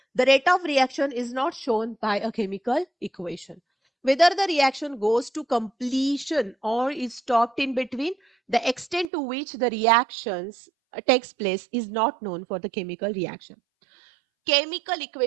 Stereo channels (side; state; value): left; drops out; at 9.1 s